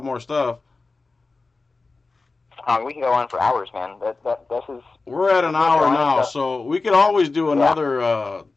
more stuff. We can go on for hours, man. This is. We're at an hour now, so we could always do another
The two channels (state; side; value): quieter; right; 3.8 dB